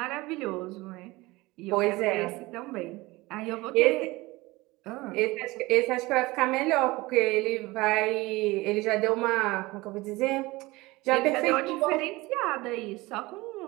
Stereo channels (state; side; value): quieter; left; 21.2 dB